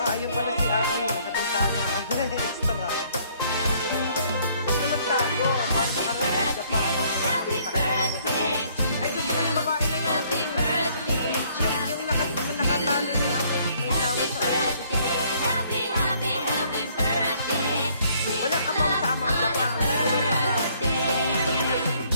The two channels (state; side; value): inverted; both; correlation -0.63